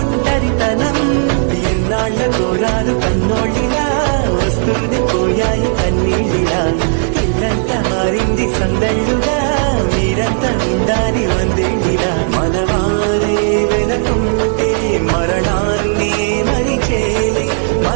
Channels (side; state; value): left; silent; 65 dB below the other